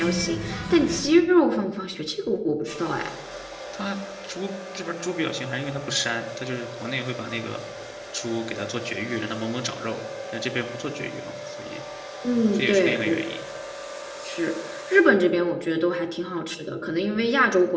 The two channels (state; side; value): identical; both; correlation 1.00